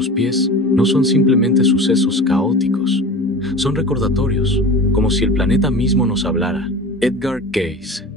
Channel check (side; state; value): both; normal; correlation 0.35